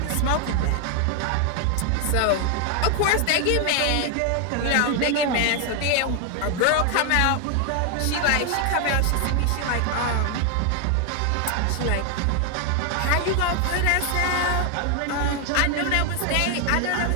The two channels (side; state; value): both; different; correlation 0.01